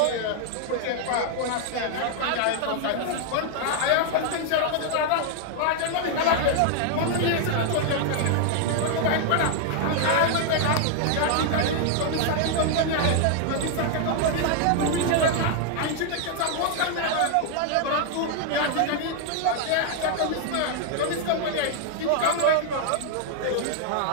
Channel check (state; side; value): different; both; correlation 0.00